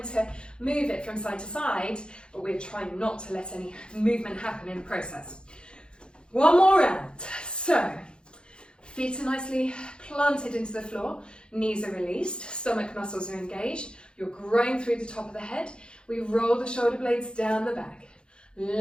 to move it from side to side, but we're trying not to let any movement happen in the process. One more round. So, feet are nicely planted into the floor, knees are released, stomach muscles are engaged, you're growing through the top of the head. We roll the shoulder blades down the back,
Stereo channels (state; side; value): late; right; 0.052 ms